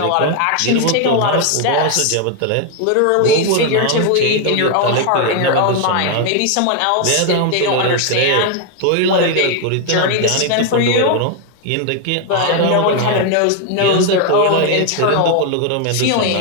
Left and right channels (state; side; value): different; both; correlation 0.01